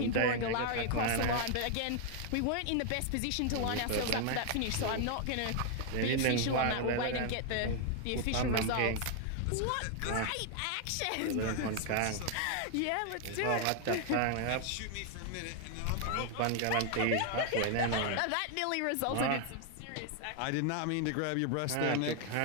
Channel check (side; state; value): both; different; correlation 0.00